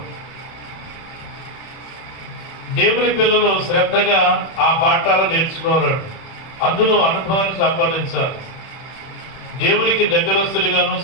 దేవుని పిల్లలు శ్రద్ధగా ఆ పాఠాలు నేర్చుకోవాలండి. అందులో అనుభవాన్ని సంపాదించాలి. దేవునికి దగ్గరస్తులుగాను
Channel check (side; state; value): right; late; 31 ms